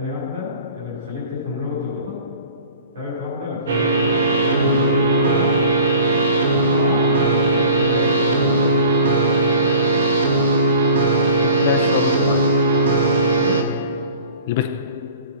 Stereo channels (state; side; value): inverted; both; correlation -0.45